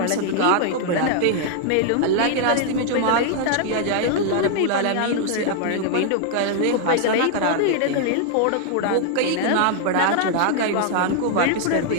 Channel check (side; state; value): both; different; correlation 0.00